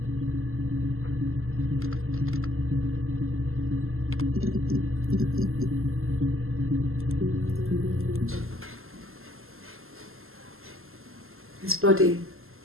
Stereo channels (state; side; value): late; left; 0.61 ms